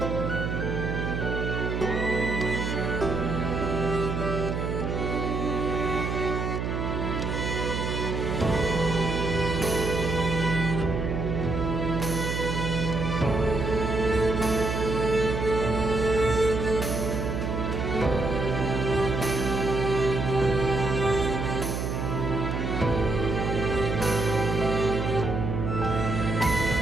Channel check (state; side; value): noise; right; hum, 2 dB below the sound